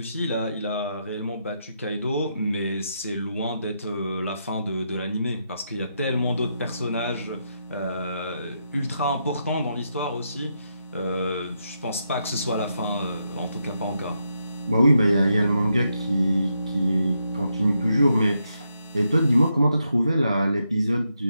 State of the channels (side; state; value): both; inverted; correlation -0.81